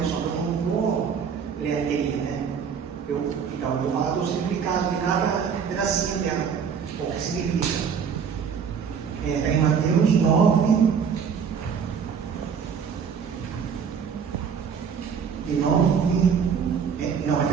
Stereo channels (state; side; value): quieter; left; 6.8 dB